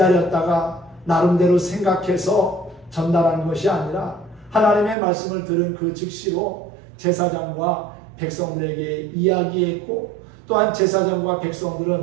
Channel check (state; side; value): drops out; left; at 5.0 s